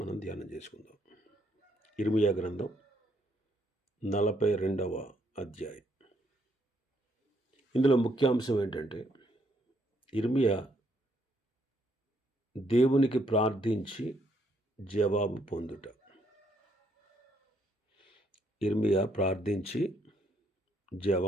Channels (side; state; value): both; normal; correlation 0.72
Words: ధ్యానం చేసుకుందాం. ఇర్మియా గ్రంథం 42వ అధ్యాయం. ఇందులో ముఖ్యాంశం ఏంటంటే, ఇర్మియా దేవునికి ప్రార్థించి జవాబు పొందుట. ఇర్మియా ప్రార్థించి